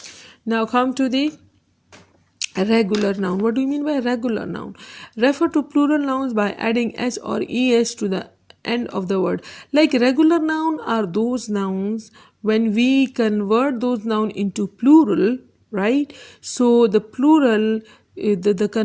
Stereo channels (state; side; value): identical; both; correlation 1.00